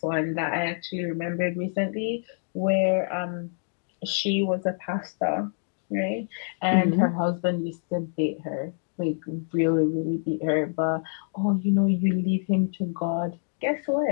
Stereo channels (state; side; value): silent; right; digital silence